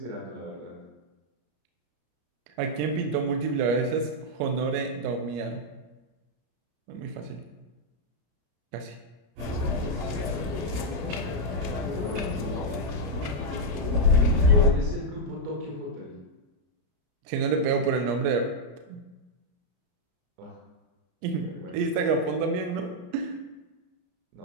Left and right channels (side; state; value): left; late; 34 ms